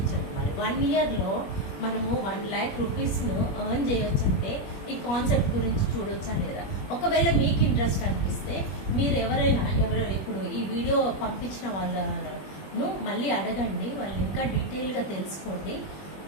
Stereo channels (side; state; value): right; late; 21 ms